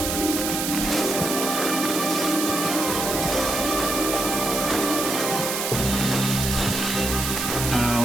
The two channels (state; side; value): noise; right; hiss, 2 dB below the sound